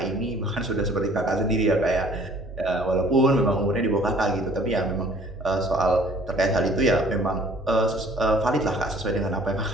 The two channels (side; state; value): both; normal; correlation 0.54